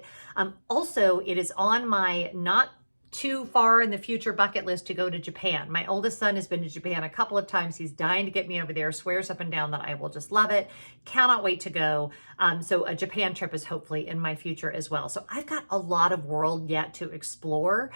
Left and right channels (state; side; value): inverted; both; correlation -1.00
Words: Also, it is on my not too far in the future bucket list to go to Japan. My oldest son has been to Japan a couple of times. He's dying to get me over there, swears up and down that I will just love it. Cannot wait to go. So a Japan trip is hopefully in my future as well. So I've got a lot of world yet to explore.